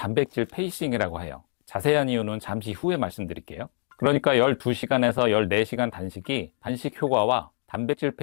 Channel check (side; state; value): right; silent; digital silence